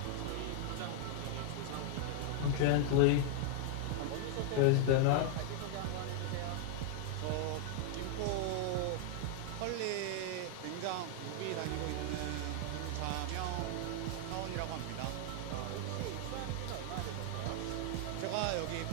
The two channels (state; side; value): different; both; correlation 0.00